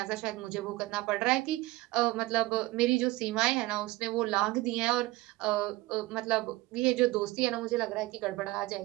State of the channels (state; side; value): quieter; left; 19.9 dB